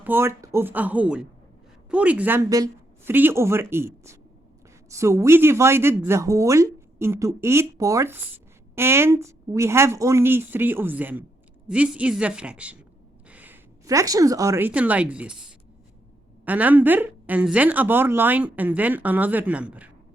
of a whole. For example, 3/8. So we divided the whole into 8 parts and we have only 3 of them. This is the fraction. Fractions are written like this. A number and then a bar line and then another number.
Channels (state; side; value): normal; both; correlation 0.79